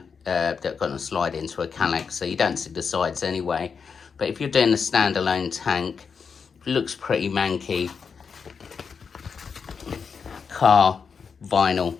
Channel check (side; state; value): right; quieter; 5.9 dB